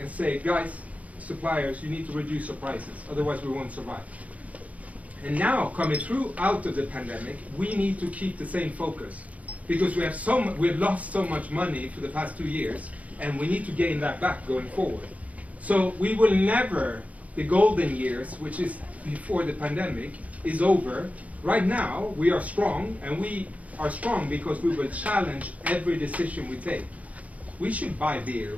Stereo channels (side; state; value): left; late; 0.069 ms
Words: say, guys, suppliers, you need to reduce your prices, otherwise we won't survive. And now, coming through out of the pandemic, we need to keep the same focus, because we've lost so much money for the past 2 years, and we need to gain that back going forward. So we will never, the golden years, which is before the pandemic, is over. Right now, we are strong, and we are strong because we will challenge every decision we take. We should buy beer,